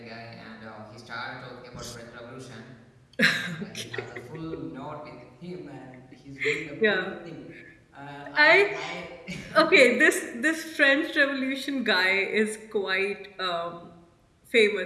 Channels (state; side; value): identical; both; correlation 1.00